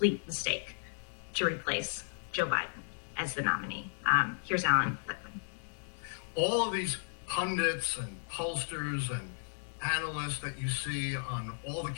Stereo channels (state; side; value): silent; right; digital silence